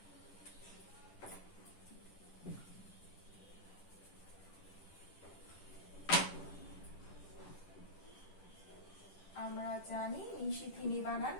আমরা জানি নিশিথিনী বানান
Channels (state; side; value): late; right; 10 ms